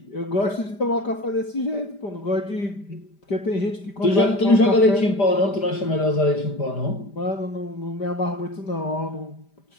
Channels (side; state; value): right; late; 5.0 ms